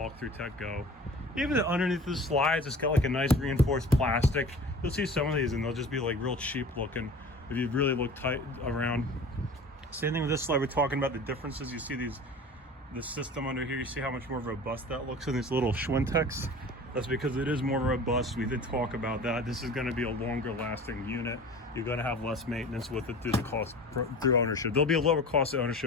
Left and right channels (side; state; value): both; normal; correlation 0.40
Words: tech go. Even underneath the slides, it's got like a nice reinforced plastic. You'll see some of these and they'll just be like real cheap looking if you really look tight around. Same thing with this slide. We're talking about the differences. You see the system under here. You see how much more robust that looks in these little Schwintex. That's because it is more robust. We did talk about that. This is going to be a longer lasting unit. You're going to have less maintenance with it through the cost, through ownership. There'll be a lower cost of